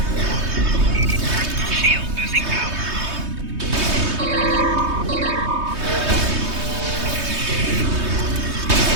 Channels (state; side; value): late; left; 3.2 ms